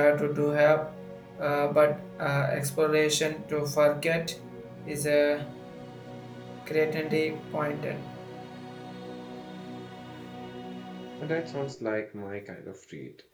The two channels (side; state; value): both; identical; correlation 1.00